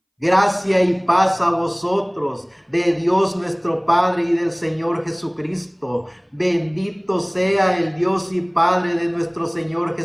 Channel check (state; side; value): identical; both; correlation 1.00